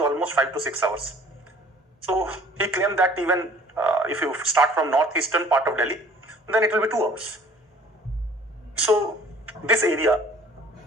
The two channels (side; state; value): both; normal; correlation 0.52